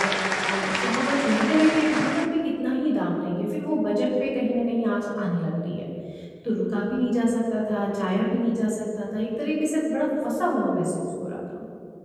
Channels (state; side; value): identical; both; correlation 1.00